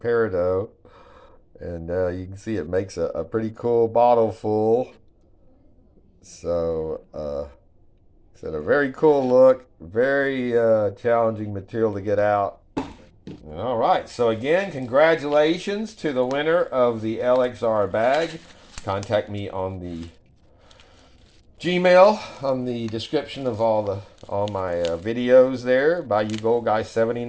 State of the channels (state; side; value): identical; both; correlation 1.00